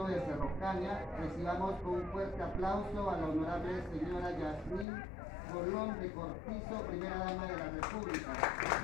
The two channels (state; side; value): drops out; right; at 4.9 s